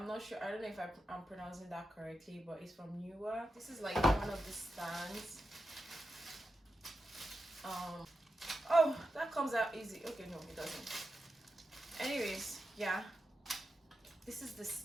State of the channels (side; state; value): both; normal; correlation 0.89